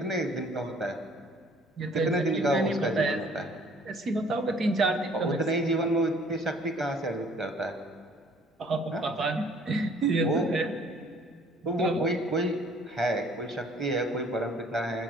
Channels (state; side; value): normal; both; correlation 0.56